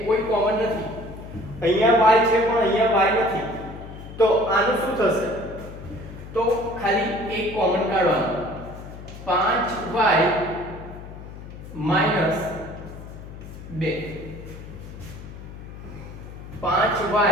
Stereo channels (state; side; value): noise; left; hum, 13 dB below the sound